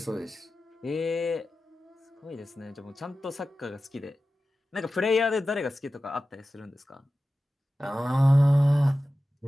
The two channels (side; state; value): both; normal; correlation 0.94